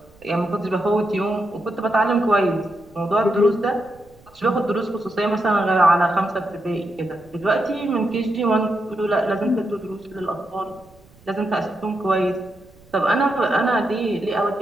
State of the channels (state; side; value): noise; right; rumble, 28 dB below the sound